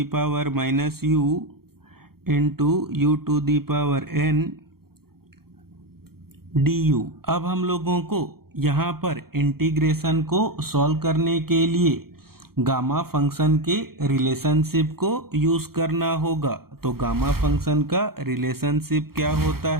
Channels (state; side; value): late; left; 0.94 ms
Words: power minus u into u to the power n du। अब हम लोगों को यहाँ पर इंटीग्रेशन को सॉल्व करने के लिए गामा फंक्शन के रिलेशनशिप को यूज करना होगा। तो गामा फंक्शन का रिलेशनशिप क्या होता